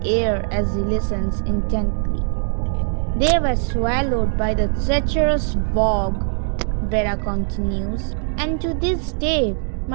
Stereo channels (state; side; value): silent; left; 59 dB below the other